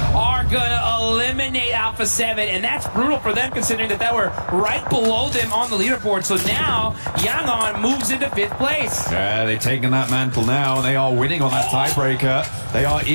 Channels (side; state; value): both; inverted; correlation -1.00